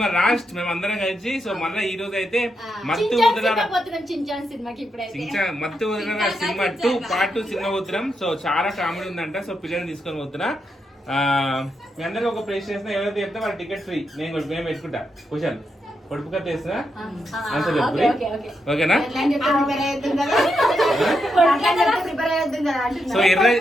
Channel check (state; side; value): normal; both; correlation 0.83